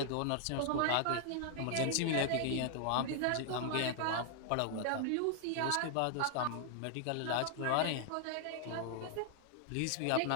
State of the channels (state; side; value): different; both; correlation 0.00